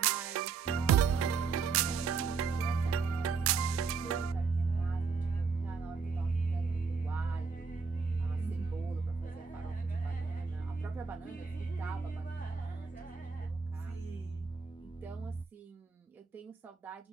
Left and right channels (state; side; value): quieter; left; 5.2 dB